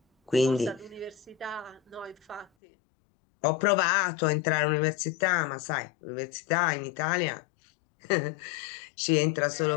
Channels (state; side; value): drops out; right; at 2.5 s